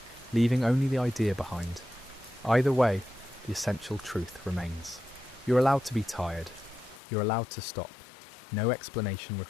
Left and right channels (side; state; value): right; drops out; at 7.0 s